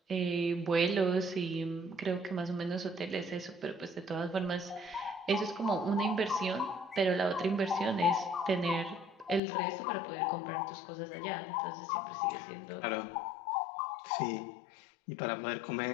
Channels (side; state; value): right; drops out; at 9.4 s